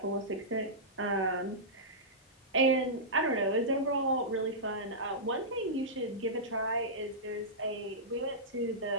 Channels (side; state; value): both; normal; correlation -0.14